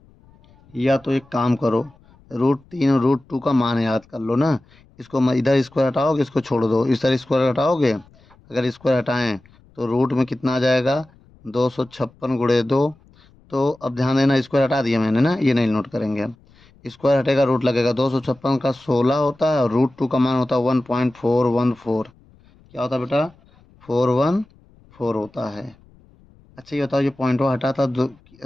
या तो एक काम करो, √3 और √2 का मान याद कर लो ना। इसको इधर स्क्वायर हटाओगे, इसको छोड़ दो, इस तरह स्क्वायर हटाओगे, अगर स्क्वायर हटाएं तो रूट में कितना आ जाएगा, 256 गुणे 2। तो अब ध्यान देना, स्क्वायर हटा दिया मैंने ना, ये नहीं नोट करेंगे हम। स्क्वायर हटेगा, रूट लगेगा, 256 का 16 होता है और √2 का मान होता है 1.414। क्या होता है बेटा, 414 होता है। अच्छा ये बताओ, ये पॉइंट हटा था,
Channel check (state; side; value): noise; left; rumble, 29 dB below the sound